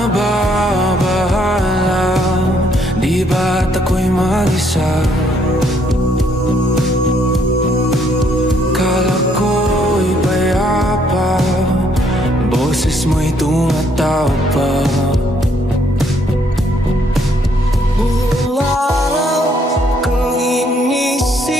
Di ba't ako'y mag-isa? Kala ko'y payapa, boses mo'y tumatawag pa. Buong araw kang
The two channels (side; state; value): both; normal; correlation 0.68